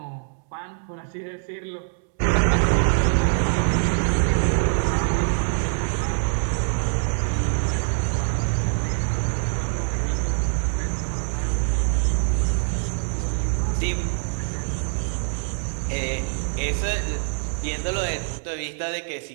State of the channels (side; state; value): left; silent; 62 dB below the other